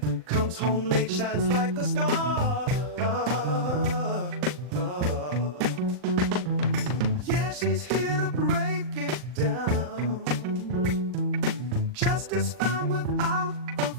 Comes home late, shines like a star. Yeah, she's here to break it down. Justice found without a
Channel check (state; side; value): late; left; 39 ms